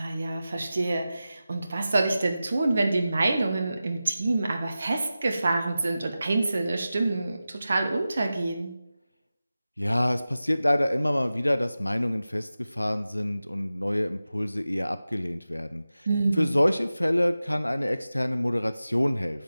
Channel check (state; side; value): inverted; both; correlation -0.94